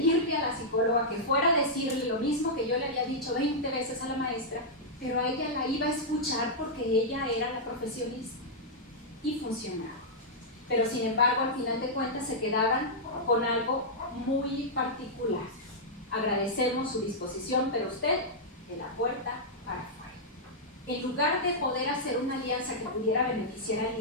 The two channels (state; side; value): normal; both; correlation -0.08